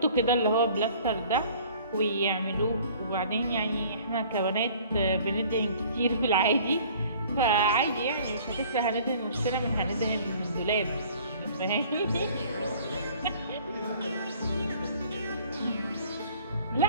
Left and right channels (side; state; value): both; inverted; correlation -0.52